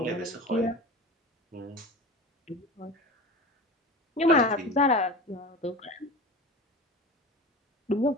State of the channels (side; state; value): both; normal; correlation 0.32